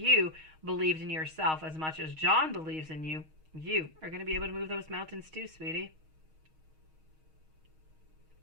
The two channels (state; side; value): late; left; 6.4 ms